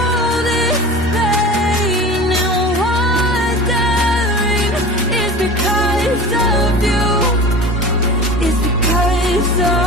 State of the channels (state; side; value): normal; both; correlation 0.35